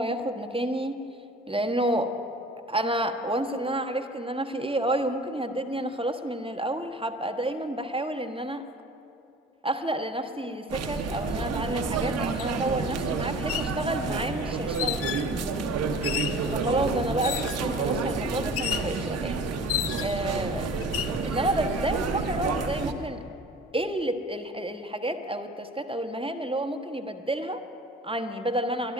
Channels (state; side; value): normal; both; correlation 0.43